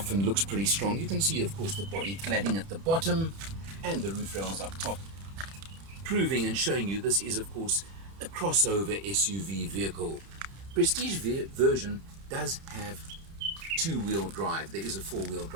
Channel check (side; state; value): left; late; 30 ms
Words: and looks pretty strong. You can see, of course, the body cladding at the bottom and the roof rails up top, proving and showing you this is, of course, a crossover SUV vehicle. Prestige version does have two-wheel drive. There is a four-wheel